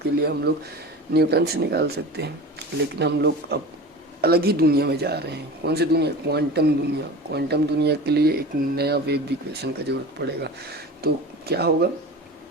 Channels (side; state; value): both; normal; correlation 0.33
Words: के लिए हम लोग न्यूटन से निकाल सकते हैं। लेकिन हम लोग अब अलग ही दुनिया में जा रहे हैं। कौन सी दुनिया, क्वांटम दुनिया। क्वांटम दुनिया के लिए एक नया वेव इक्वेशन का जरूरत पड़ेगा। तो क्या होगा,